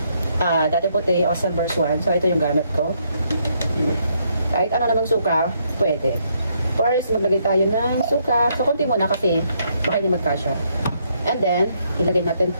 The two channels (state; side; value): inverted; both; correlation -0.73